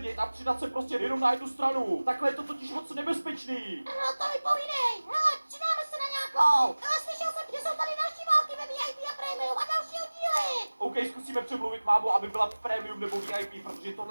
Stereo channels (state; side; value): inverted; both; correlation -1.00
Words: a přidat se prostě jenom na jednu stranu. Takhle je to totiž moc nebezpečný. No to mi povídej. Hele, přidáme se na nějakou. Ale slyšel jsem, že jsou tady další války ve VIP a Premium a další oddíly. OK, zkusíme přemluvit mámu, aby byla premium nebo VIP, protože